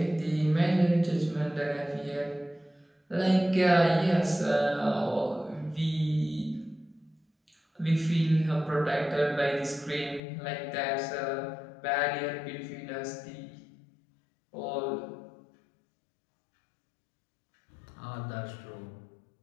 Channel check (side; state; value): right; drops out; at 10.2 s